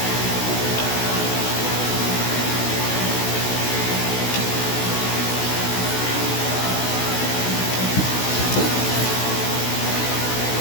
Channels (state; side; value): late; right; 16 ms